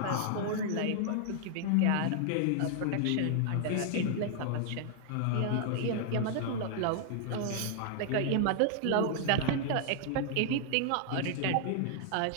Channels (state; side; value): different; both; correlation 0.00